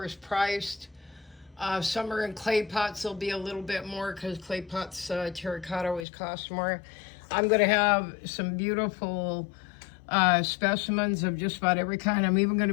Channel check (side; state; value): right; drops out; at 6.1 s